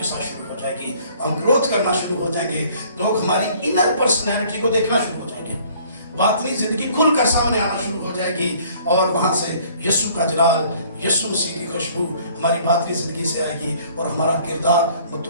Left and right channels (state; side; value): inverted; both; correlation -0.57